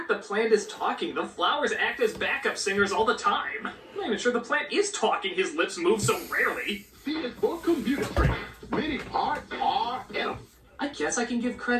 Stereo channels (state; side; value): identical; both; correlation 1.00